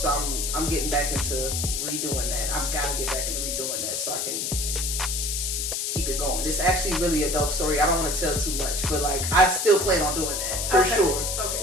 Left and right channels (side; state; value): left; noise; hiss, 1 dB below the sound